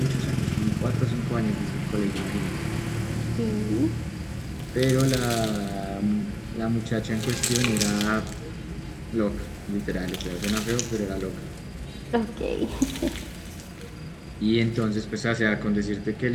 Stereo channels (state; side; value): identical; both; correlation 1.00